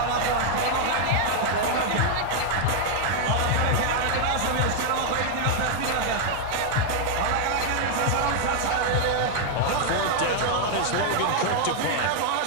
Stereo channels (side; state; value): both; different; correlation 0.00